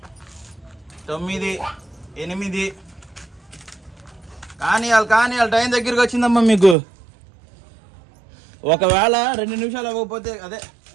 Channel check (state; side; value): drops out; left; at 6.8 s